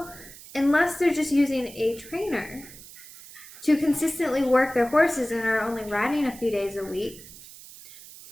they're just using a trainer to consistently work their horses and are only riding a few days a week,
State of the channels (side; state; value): right; noise; hiss, 18 dB below the sound